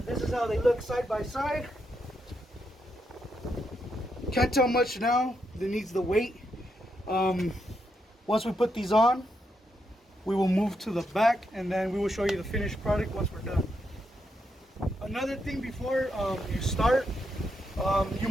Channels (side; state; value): both; normal; correlation 0.81